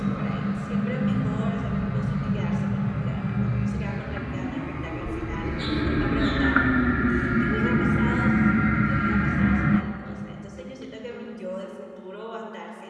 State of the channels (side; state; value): both; identical; correlation 1.00